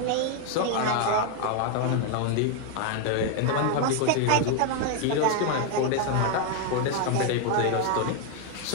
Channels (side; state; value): both; different; correlation 0.01